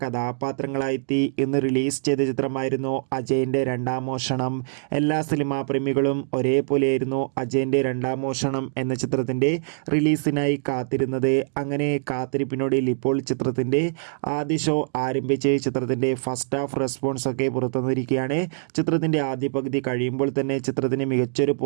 കഥാപാത്രങ്ങളായെത്തി ഇന്ന് റിലീസ് ചെയ്ത ചിത്രമായിരുന്നു അജയൻ്റെ രണ്ടാം മോഷണം. എല്ലാ സിനിമാ പ്രേമികളും ഒരേപോലെയായിരുന്നു അജയൻ്റെ രണ്ടാം മോഷണം എന്ന ചിത്രത്തിൻ്റെ റിലീസിനായി കാത്തിരുന്നത്. അങ്ങനെ കാത്തിരിപ്പിനൊടുവിൽ ഇപ്പോൾ ചിത്രത്തിൻ്റെ ആദ്യ ഷോ ആരംഭിച്ച് ചിത്രത്തിൻ്റെ ഫസ്റ്റ് ഹാഫ് റെസ്പോൺസ് ഒക്കെ പുറത്തുവന്നിരിക്കുകയാണ്. ചിത്രത്തിൻ്റെ ആദ്യ പകുതി കഴിയുമ്പോൾ തന്നെ ചിത്രത്തിന് മികച്ചൊരു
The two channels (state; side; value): silent; left; digital silence